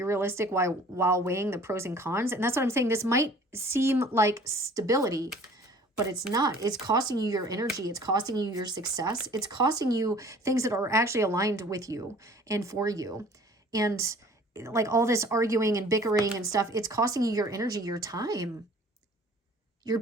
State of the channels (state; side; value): normal; both; correlation 0.50